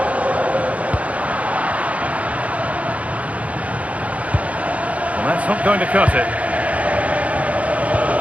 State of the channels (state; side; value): late; left; 0.067 ms